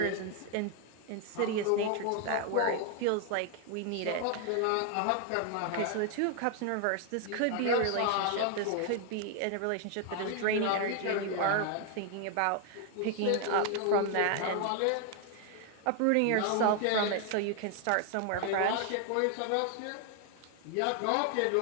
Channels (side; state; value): both; different; correlation 0.00